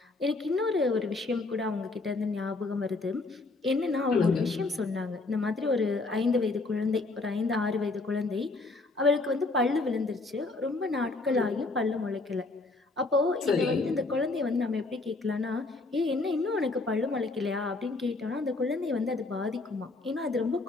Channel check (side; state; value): right; quieter; 3.4 dB